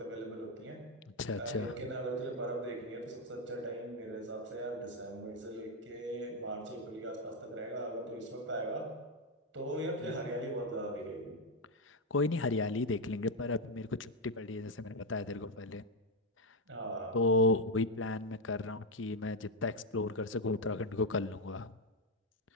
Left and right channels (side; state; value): both; normal; correlation 0.04